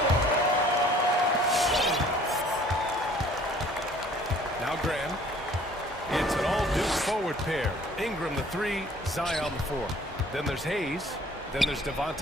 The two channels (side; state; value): both; normal; correlation 0.54